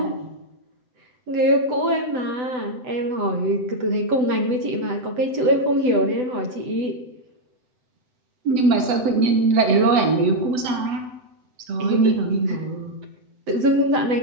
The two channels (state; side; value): late; left; 7.8 ms